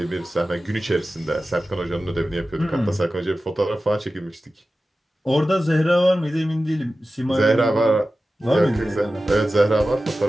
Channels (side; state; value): both; normal; correlation 0.95